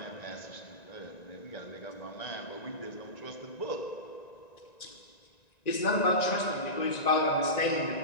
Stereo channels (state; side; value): late; right; 1.9 ms